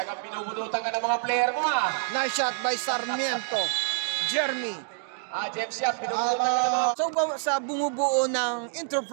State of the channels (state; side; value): silent; left; digital silence